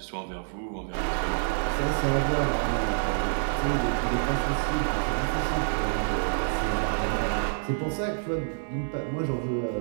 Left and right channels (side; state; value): left; silent; 60 dB below the other